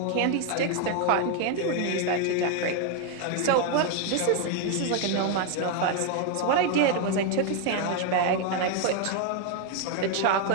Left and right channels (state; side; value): different; both; correlation 0.01